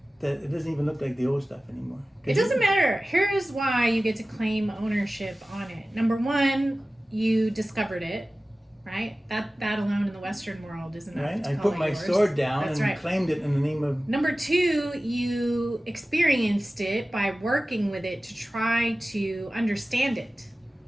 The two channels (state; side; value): normal; both; correlation 0.96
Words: that it doesn't even look like the old stuff anymore. It doesn't matter. Here's why you get to claim ownership on it. Number one, you discovered it, right? That alone in the Western world is enough Right? to I call put it my yours. sword down That's and right. claimed it in the name of. Number two, you experienced it by working with it to try to understand it.